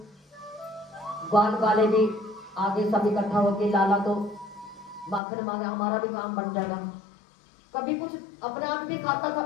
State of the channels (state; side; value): drops out; right; at 5.2 s